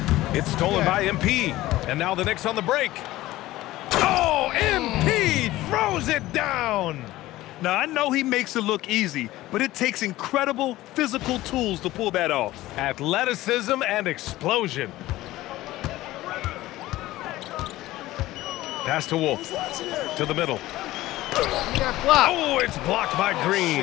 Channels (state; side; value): quieter; right; 16.7 dB